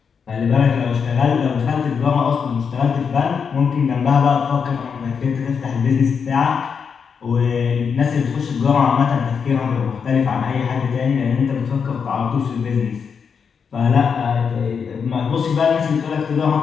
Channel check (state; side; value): quieter; right; 6.3 dB